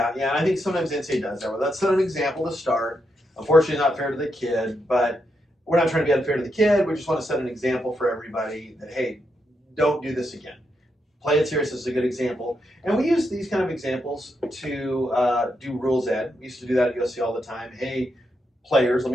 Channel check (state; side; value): normal; both; correlation 0.82